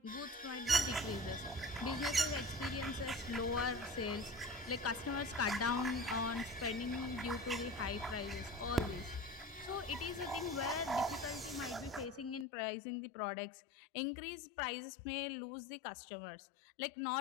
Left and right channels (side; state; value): right; drops out; at 12.5 s